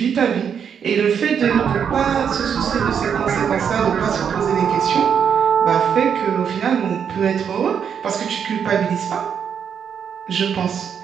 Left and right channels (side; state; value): left; quieter; 7.6 dB